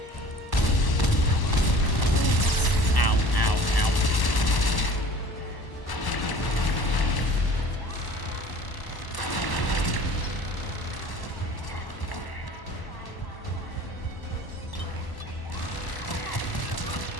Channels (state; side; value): late; right; 1.1 ms